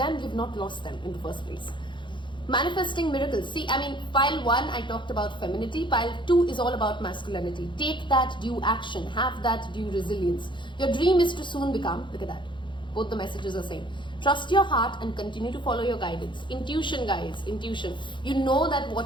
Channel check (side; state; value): right; late; 0.23 ms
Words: You've not lost them in the first place. Manifesting miracles. See, I mean, pile 1 I talked about femininity, pile 2 is all about masculinity. Take that due action, have that due resilience. Your dream is to soon become, look at that, both the messages are same. Trust your heart and continue to follow your guidance. Intuition, guys, intuition. You know that